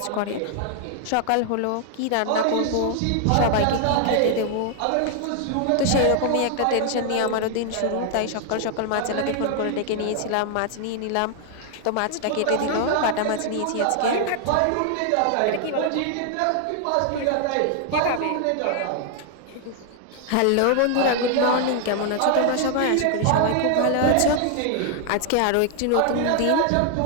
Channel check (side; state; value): both; different; correlation 0.00